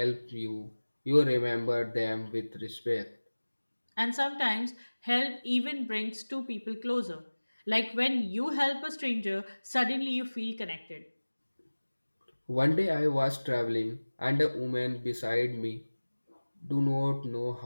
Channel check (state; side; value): inverted; both; correlation -1.00